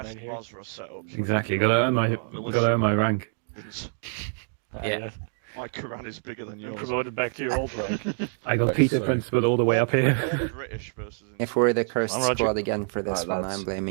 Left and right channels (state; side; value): silent; left; 58 dB below the other